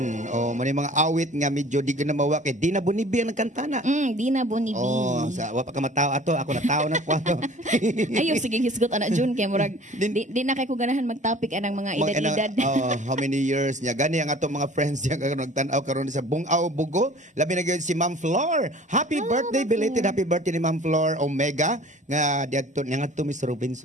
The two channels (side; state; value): both; normal; correlation 0.47